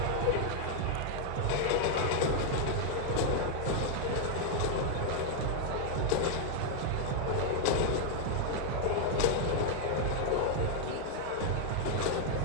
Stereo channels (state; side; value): different; both; correlation 0.00